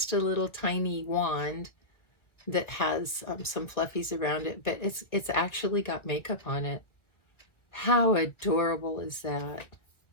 a little tiny wand that has some fluffies around it, but it's actually got makeup on it. How adorable is that?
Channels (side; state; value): right; late; 1.9 ms